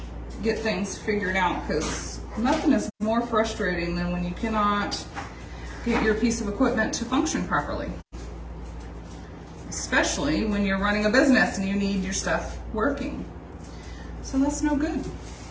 get things figured out, because nothing is more frustrating than when you cannot get your piece of equipment to function properly. Especially when you're running a business and you need your stuff working. So that's no good.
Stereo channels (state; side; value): identical; both; correlation 1.00